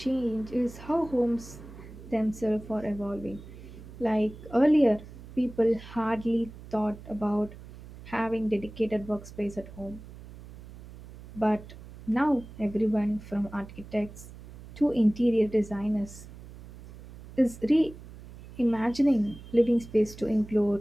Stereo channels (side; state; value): right; noise; hum, 16 dB below the sound